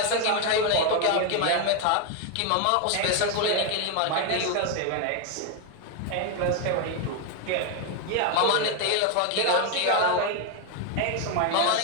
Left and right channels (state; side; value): different; both; correlation 0.01